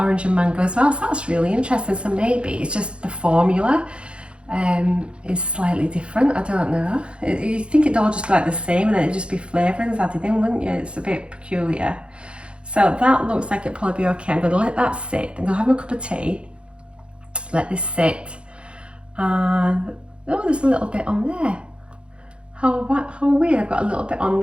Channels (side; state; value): left; late; 0.057 ms